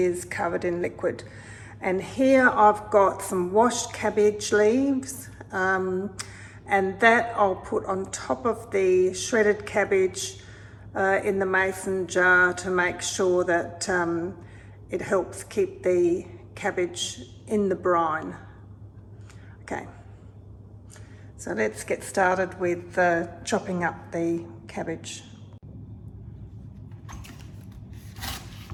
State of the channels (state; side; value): identical; both; correlation 1.00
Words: covered in liquid. And here I've got some washed cabbage leaves, and that I'll put on top of the shredded cabbage in the mason jar to make sure that it helps keep the cabbage in the brine. Okay, so let's get started with chopping up the cabbage.